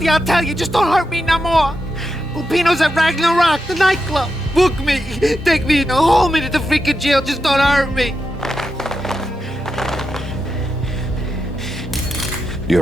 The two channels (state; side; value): normal; both; correlation 0.87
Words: I'll tell you, just don't hurt me no more. Lupino's at Ragnarok, the nightclub. Book me, take me in the whole minute to freaking jail, just don't hurt me.